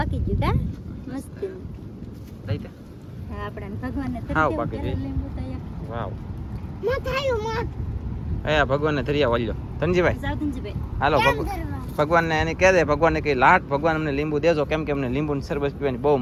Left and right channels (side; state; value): both; identical; correlation 1.00